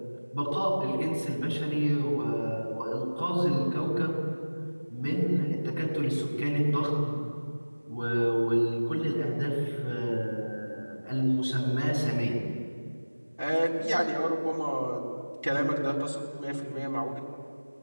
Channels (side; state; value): both; inverted; correlation -1.00